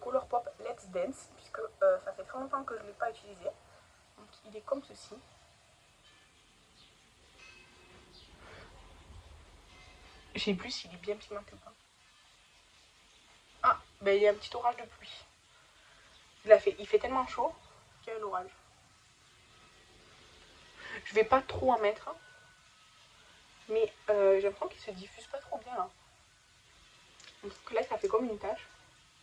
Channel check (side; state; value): both; identical; correlation 1.00